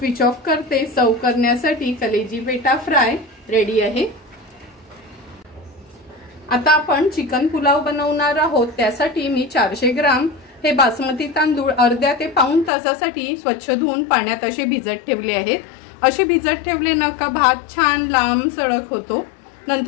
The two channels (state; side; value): drops out; right; at 12.7 s